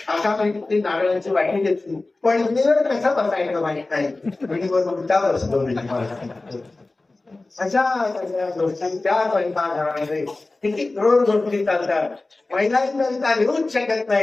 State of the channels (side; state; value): right; quieter; 3.2 dB